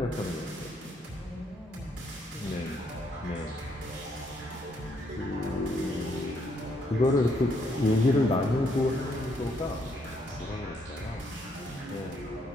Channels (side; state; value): both; normal; correlation 0.72